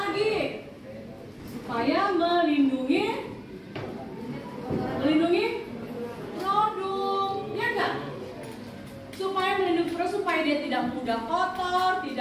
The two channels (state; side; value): identical; both; correlation 1.00